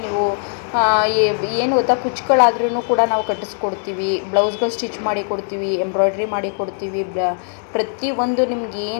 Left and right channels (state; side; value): silent; right; digital silence